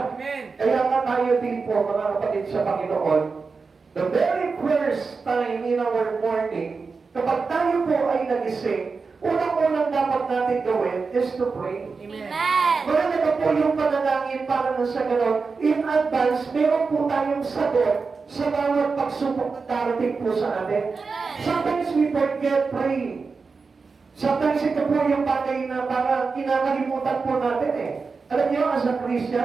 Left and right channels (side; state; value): left; quieter; 4.7 dB